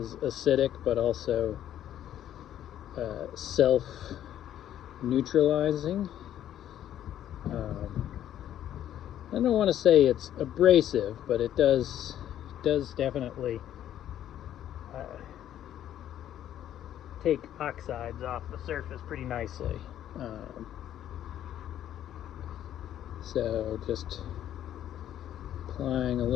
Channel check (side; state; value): right; quieter; 11.3 dB